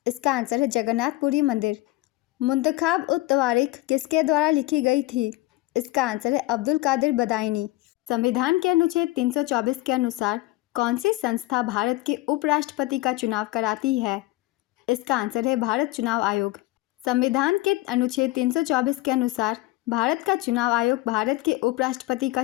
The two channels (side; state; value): right; quieter; 18.9 dB